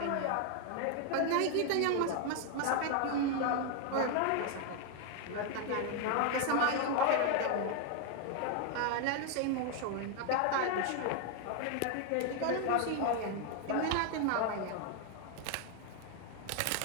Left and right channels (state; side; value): different; both; correlation 0.00